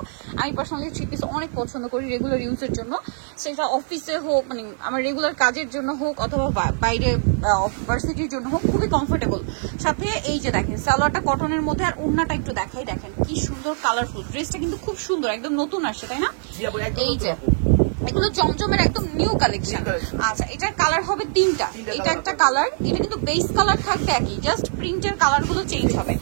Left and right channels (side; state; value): left; silent; digital silence